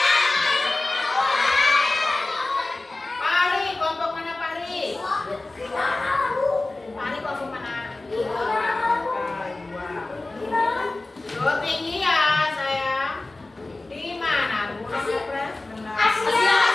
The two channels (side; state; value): right; quieter; 3.0 dB